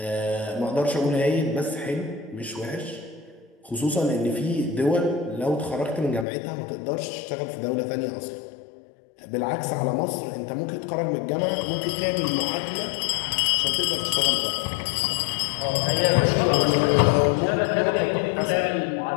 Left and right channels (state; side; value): drops out; right; at 6.2 s